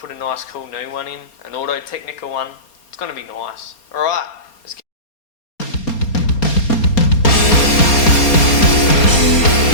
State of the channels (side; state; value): right; late; 4.3 ms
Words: a nice cool new one in, an Auto Technica one. It's going to be nice. Alright, let's get